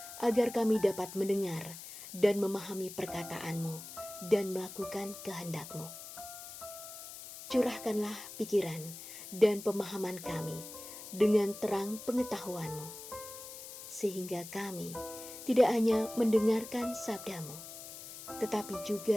agar kami dapat mendengar dan memahami perkataan-Mu dan melakukan kehendak-Mu. Curahkanlah pikiran dan pemahaman kami dengan terang pengetahuan-Mu, sehingga kami tidak hanya mendengarkan sabda-Mu, tetapi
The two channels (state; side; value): noise; left; hiss, 12 dB below the sound